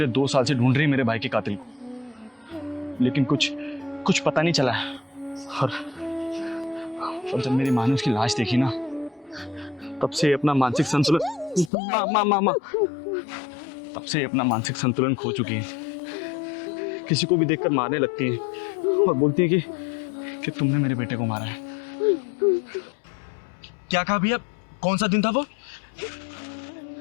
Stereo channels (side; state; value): right; drops out; at 11.7 s